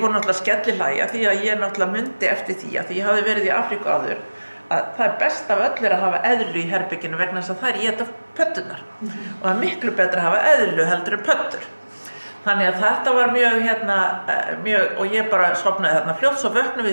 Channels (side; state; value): both; inverted; correlation -1.00